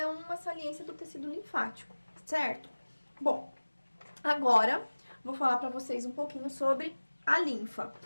uma saliência do tecido linfático, certo? Bom, agora vou falar para vocês um pouquinho sobre a linfa.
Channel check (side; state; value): both; inverted; correlation -1.00